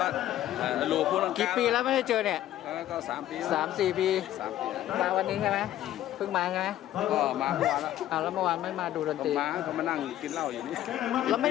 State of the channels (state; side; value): quieter; right; 13.1 dB